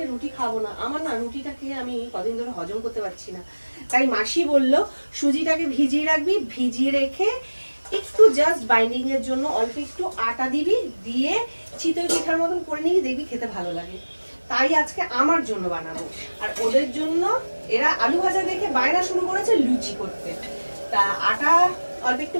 রুটি খাবো না। আমার না রুটিটা খেয়ে আমি কদিন ধরে হজম করতে পারছি না। তাই মাসি বললো সুজিটাকে ভিজিয়ে রাখবি, ভিজিয়ে রেখে একটু জাস্ট বাইন্ডিং এর জন্য অল্প একটু আটা দিবি, দিয়ে চিতই পিঠার মতন করে নিবি, দেখবি খেতে ভালো লাগে। তাই আজকে আমার জন্য বানাবো, আর ওদের জন্য এরা আলু ভাজা দেখে বায়না শুরু করেছে লুচি করতে। তা আটা অল্প একটু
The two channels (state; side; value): inverted; both; correlation -1.00